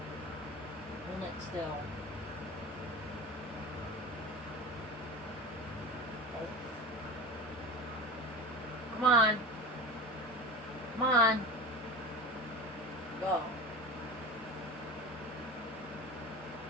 Hold it still. Oh. Come on. Come on. Go.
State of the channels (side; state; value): both; normal; correlation 0.30